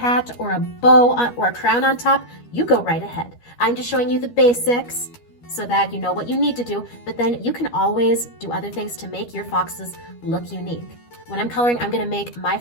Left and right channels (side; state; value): right; late; 13 ms